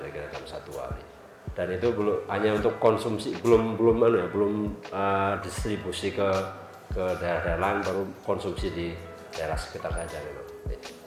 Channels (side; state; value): both; identical; correlation 1.00